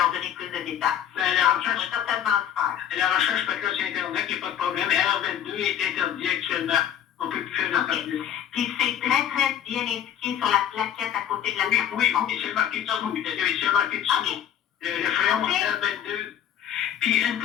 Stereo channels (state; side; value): quieter; right; 10.0 dB